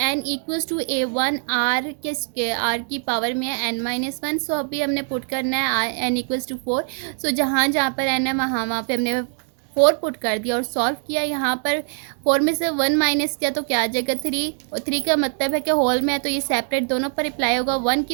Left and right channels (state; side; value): silent; left; 57 dB below the other